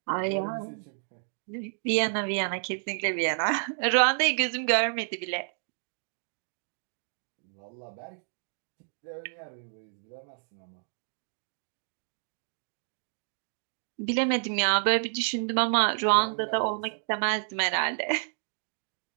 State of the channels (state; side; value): silent; left; digital silence